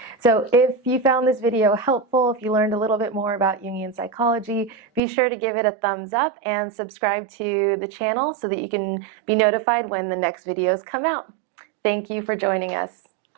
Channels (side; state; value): left; drops out; at 5.0 s